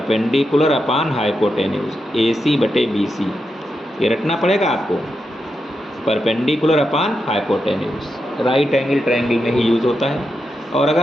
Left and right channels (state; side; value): normal; both; correlation 0.86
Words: अपान हाइपोटेन्यूज AC/BC, ये रखना पड़ेगा आपको। Perpendicular upon hypotenuse right angle triangle में ही यूज़ होता है। और